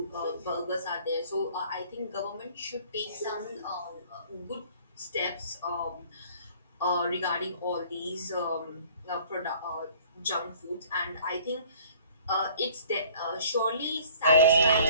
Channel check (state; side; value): inverted; both; correlation -0.53